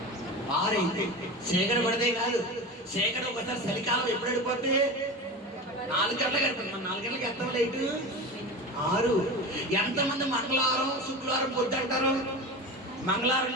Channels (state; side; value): normal; both; correlation 0.28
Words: 6 అయితే చీకటి పడితే కాదు, చీకటి ఒకసారి చలికాలం ఎప్పుడు వెళ్ళిపోతే 4 గంటలకు వెళ్తుంది. 4 గంటలకు ఎత్తాం లైట్ 6. ఎంతమంది మంగళవారం శుక్రవారం పొద్దు అంటారు? మంగళవారం